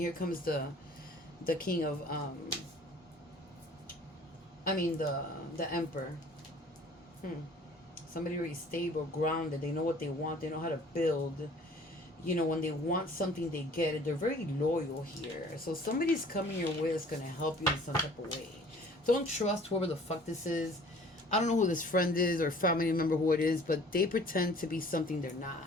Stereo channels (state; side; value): normal; both; correlation 0.51